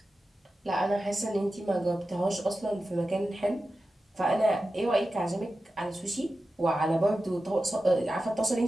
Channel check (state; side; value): normal; both; correlation 0.93